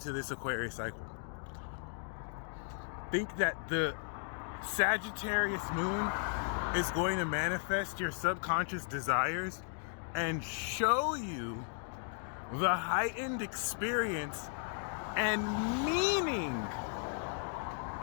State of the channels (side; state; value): right; silent; 54 dB below the other